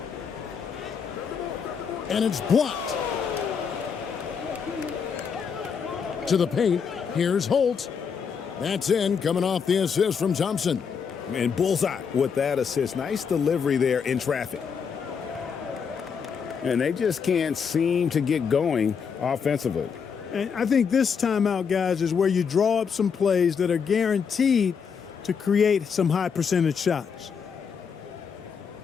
And it's blocked. To the paint. Here's Holt. That's in, coming off the assist from Thompson. And bullseye with that assist. Nice delivery there in traffic. And they just can't seem to get going offensively. And I think this timeout, guys, is where you draw up some plays that are guaranteed to create some high percentage shots.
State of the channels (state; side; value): quieter; right; 6.4 dB